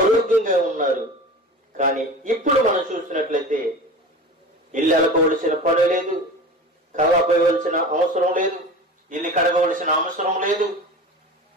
ఉన్నారు. కానీ ఇప్పుడు మనం చూసినట్లయితే ఇల్లు అలకవలసిన పని లేదు, కల్లా పోయవలసిన అవసరం లేదు, ఇల్లు కడగవలసిన అవసరం లేదు,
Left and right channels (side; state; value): both; normal; correlation 0.34